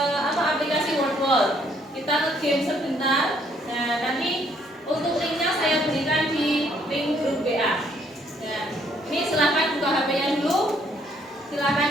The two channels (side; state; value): both; normal; correlation 0.67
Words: aplikasi WordWall. Kita nge-game sebentar. Nah, nanti untuk linknya saya berikan di link grup WA. Nah, ini silahkan buka HP-nya dulu.